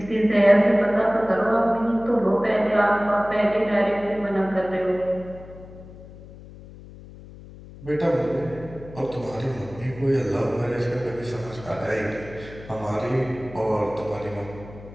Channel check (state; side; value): noise; left; hum, 17 dB below the sound